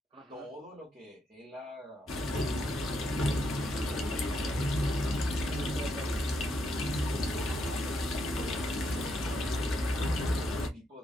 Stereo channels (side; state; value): both; normal; correlation 0.78